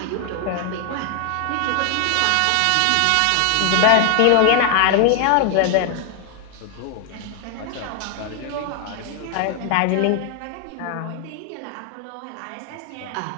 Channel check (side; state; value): both; different; correlation 0.00